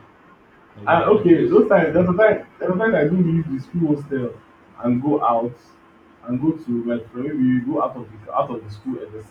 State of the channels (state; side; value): identical; both; correlation 1.00